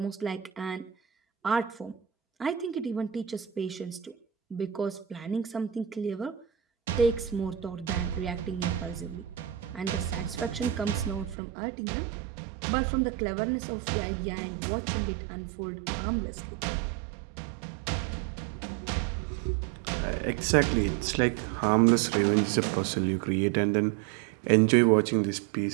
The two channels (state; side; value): drops out; left; at 11.4 s